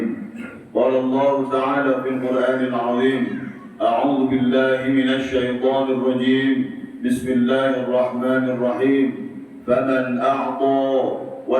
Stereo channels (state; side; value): identical; both; correlation 1.00